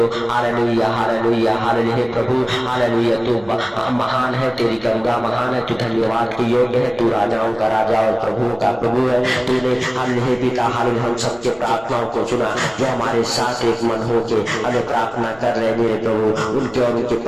हालेलुया हालेलुया हालेलुया हे प्रभु हालेलुया तू महान है, तेरी करुणा महान है, तू धन्यवाद के योग्य है, तू राजाओं का राजा और प्रभुओं का प्रभु है। तूने हालेलुया पिता हालेलुया हम सबके प्रार्थनाओं को सुना जो हमारे साथ एक मन होके हमें प्रार्थना कर रहे मेरे प्रभु, उनके और उनके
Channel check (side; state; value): left; noise; rumble, 25 dB below the sound